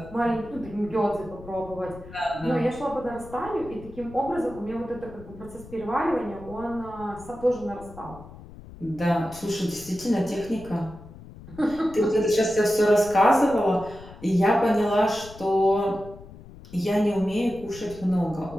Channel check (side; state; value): left; noise; rumble, 17 dB below the sound